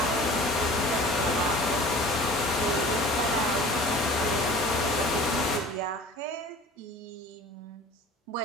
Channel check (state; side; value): normal; both; correlation 0.44